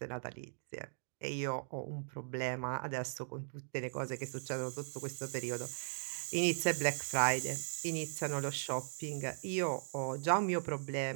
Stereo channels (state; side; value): silent; left; digital silence